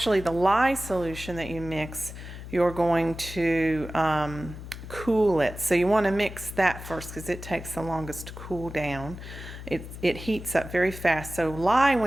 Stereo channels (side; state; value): left; noise; hum, 12 dB below the sound